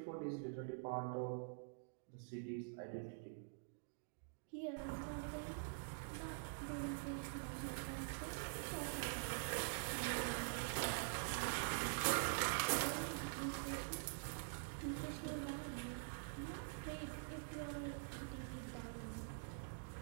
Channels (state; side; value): silent; left; digital silence